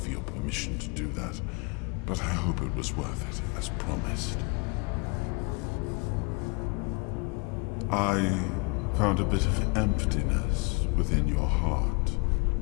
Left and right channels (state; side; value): quieter; right; 30.8 dB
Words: your permission to do that, but I hope it was worth it, as promised. I found a bit of emptiness within your heart,